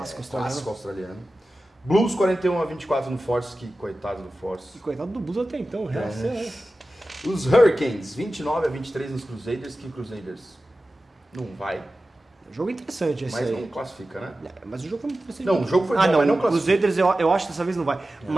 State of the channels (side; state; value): both; normal; correlation 0.95